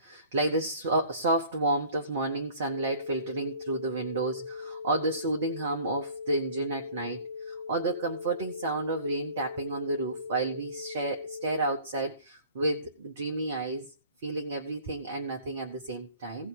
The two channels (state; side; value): inverted; both; correlation -0.49